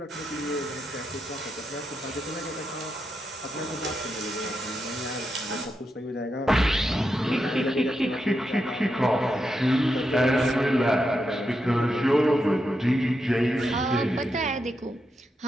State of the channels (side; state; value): both; normal; correlation 0.85